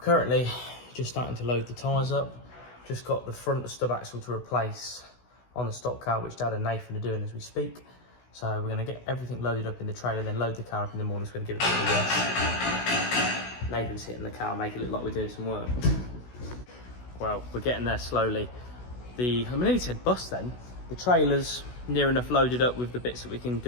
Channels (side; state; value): right; late; 16 ms